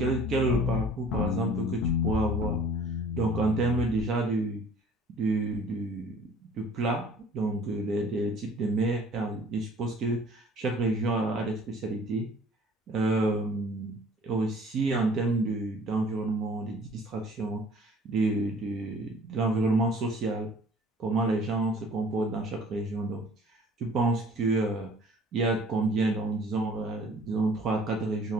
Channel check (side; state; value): both; normal; correlation 0.51